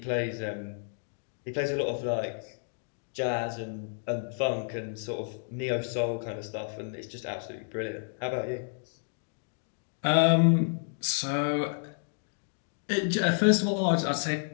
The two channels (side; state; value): right; silent; digital silence